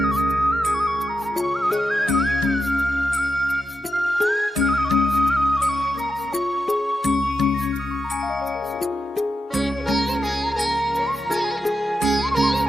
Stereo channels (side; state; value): both; normal; correlation 0.87